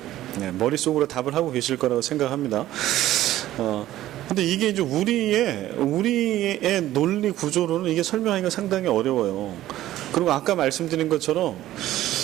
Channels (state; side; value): quieter; left; 14.2 dB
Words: 네, 머릿속으로 답을 하고 계실 거라고 생각합니다. 근데 이게 이제 우리의 논리 구조로는 이게 설명하기가 상당히 어려워요. 그리고 아까 말씀드린 것처럼,